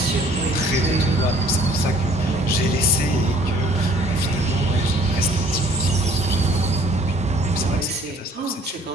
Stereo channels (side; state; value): both; normal; correlation 0.57